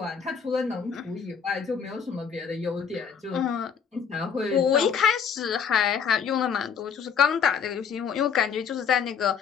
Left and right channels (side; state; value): right; quieter; 6.7 dB